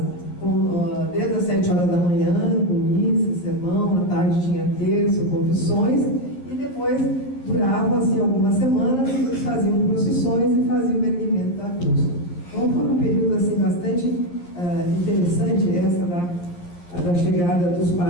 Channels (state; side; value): late; right; 11 ms